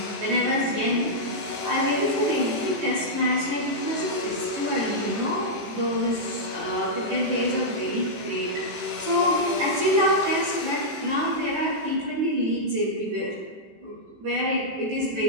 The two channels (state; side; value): late; left; 18 ms